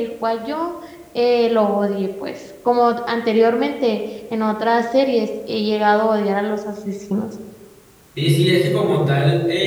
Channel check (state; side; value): identical; both; correlation 1.00